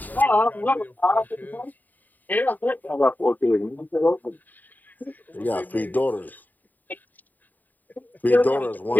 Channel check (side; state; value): right; late; 0.086 ms